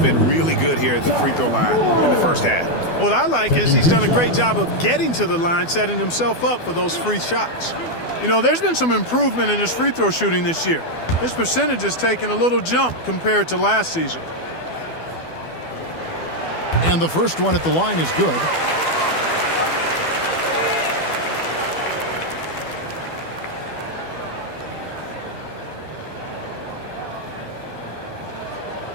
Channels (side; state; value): right; late; 12 ms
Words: really good here at the free throw line in the first half. What I like is he's done a great job of getting to the line, setting himself up for those free shots. You know, there's been some improvement in his free throw shooting this year. His percentage has taken a little jump compared to last season. And the first one at the line is good.